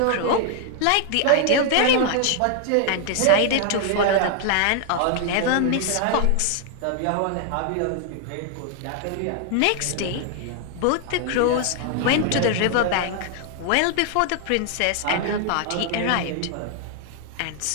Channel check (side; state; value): both; different; correlation 0.00